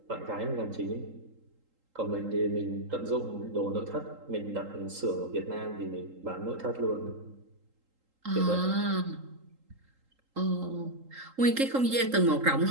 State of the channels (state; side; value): late; left; 3.8 ms